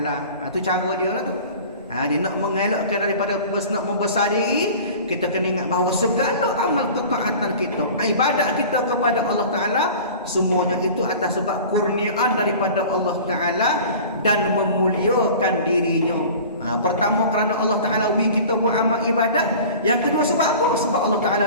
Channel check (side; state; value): both; inverted; correlation -0.40